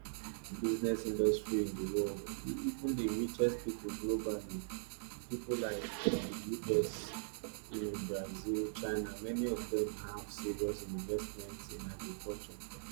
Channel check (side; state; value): left; silent; digital silence